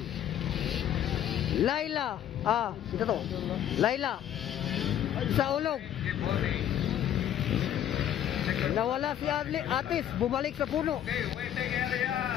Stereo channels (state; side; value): quieter; right; 10.8 dB